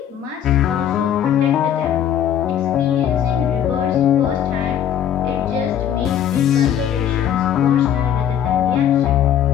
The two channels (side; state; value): right; quieter; 9.8 dB